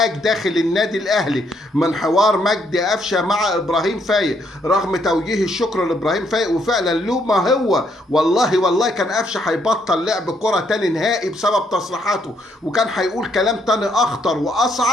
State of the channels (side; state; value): both; normal; correlation 0.72